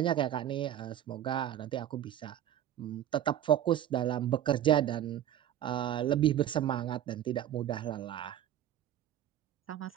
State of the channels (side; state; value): left; quieter; 11.4 dB